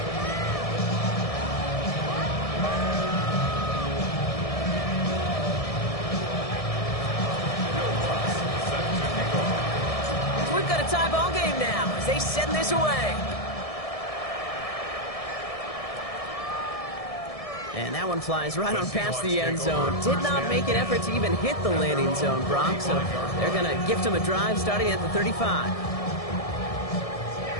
they send this away. And that one flies right on past the end zone. Did not make an effort to even hit the landing zone, Brock. So they're going to gift him a drive starting at the 35.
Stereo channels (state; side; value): late; right; 1.7 ms